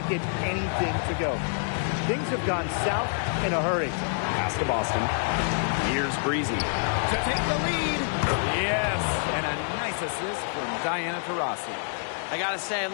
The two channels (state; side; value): silent; right; 57 dB below the other